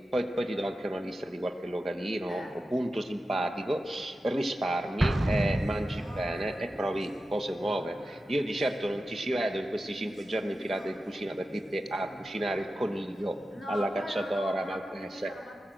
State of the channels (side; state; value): both; normal; correlation 0.92